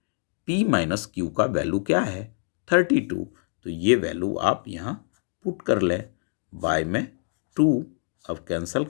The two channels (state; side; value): silent; right; 61 dB below the other